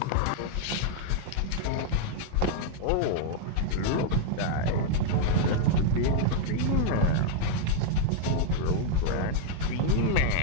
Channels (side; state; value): both; different; correlation -0.01